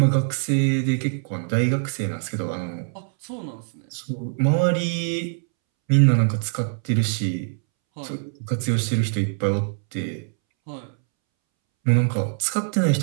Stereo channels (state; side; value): silent; left; 63 dB below the other